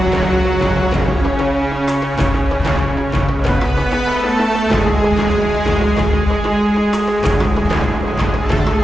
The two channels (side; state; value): both; normal; correlation 0.90